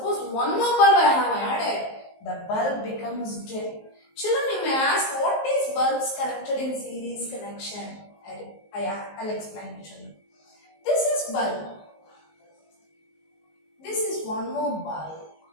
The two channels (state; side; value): late; right; 19 ms